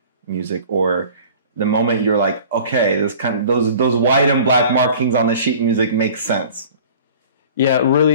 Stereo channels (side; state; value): both; inverted; correlation -0.45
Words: music, or the moment you're like, okay, this those white and black markings on the sheet music make sense? Yeah,